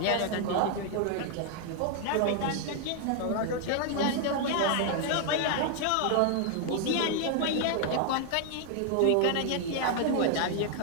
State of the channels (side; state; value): both; different; correlation 0.00